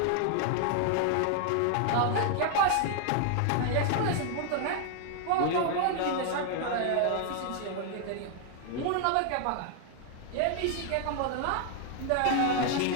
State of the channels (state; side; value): different; both; correlation 0.00